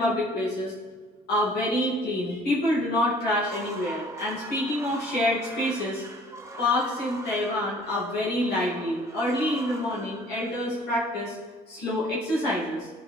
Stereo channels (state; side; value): normal; both; correlation 0.53